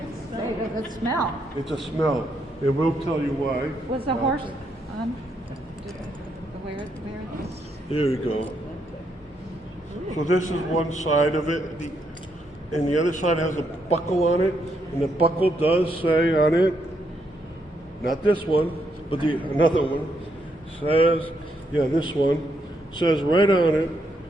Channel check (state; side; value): normal; both; correlation 0.77